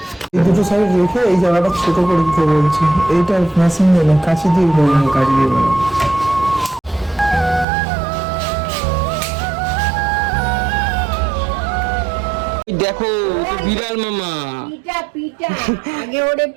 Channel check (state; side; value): drops out; left; at 7.7 s